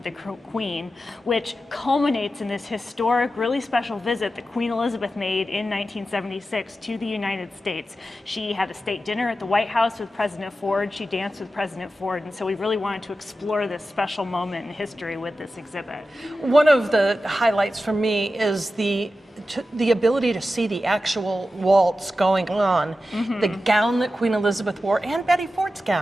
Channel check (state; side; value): normal; both; correlation 0.92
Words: the Queen, which culminates in this historic, really special visit that Queen Elizabeth made in 1976 to the United States. She had a state dinner at the White House with President Ford. She danced with President Ford, and so we really wanted to explore this special moment in history with this exhibit. One of the highlights for me is the ability to see the actual waltz going on, the gown that Queen Elizabeth wore, and Betty Ford's